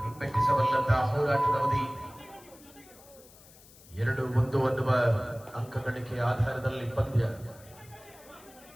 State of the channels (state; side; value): noise; left; hiss, 23 dB below the sound